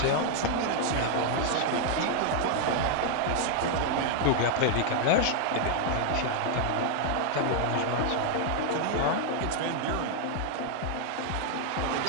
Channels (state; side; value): different; both; correlation 0.00